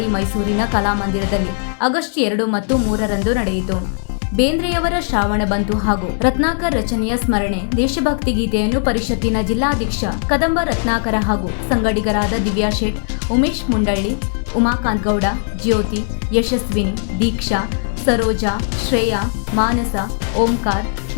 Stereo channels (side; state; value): right; silent; 63 dB below the other